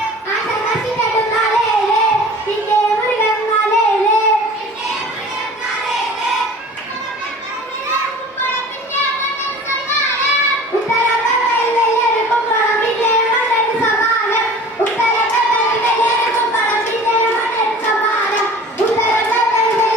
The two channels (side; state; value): both; normal; correlation 0.43